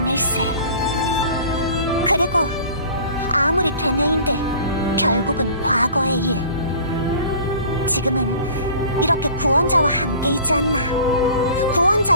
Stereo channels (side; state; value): both; inverted; correlation -0.45